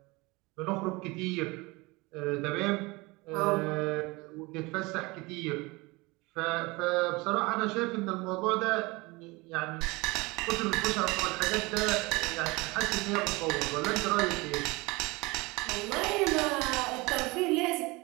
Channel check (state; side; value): quieter; left; 24.0 dB